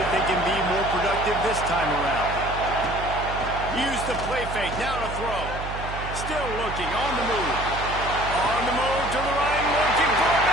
they can be more productive this time around. Use the play fake. Now to throw. Still looking. On the move. On the move to the right. Looking for a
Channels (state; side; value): noise; right; hum, 8 dB below the sound